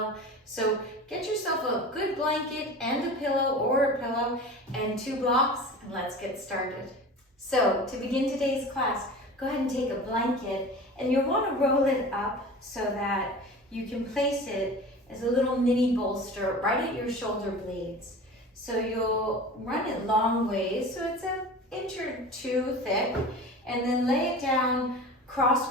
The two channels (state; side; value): normal; both; correlation 0.36